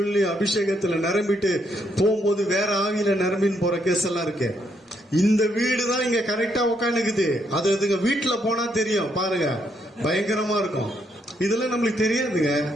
அபிஷேகத்துல நிரம்பிட்டு போகும்போது வேற ஆவியில நிரம்பின்னு போற கேஸ் எல்லாம் இருக்கு. இந்த வீடு தான் இங்க கரெக்டா உட்காந்துக்குது, அது அதுங்க வீட்டுல போனா தெரியும் பாருங்க, பயங்கரமா இருக்கும். இதெல்லாம் நம்மளுக்கு தெரியாதுங்க.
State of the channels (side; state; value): both; normal; correlation 0.75